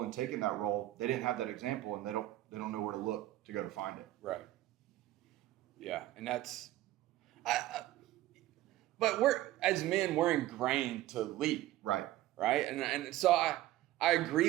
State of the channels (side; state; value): left; quieter; 15.3 dB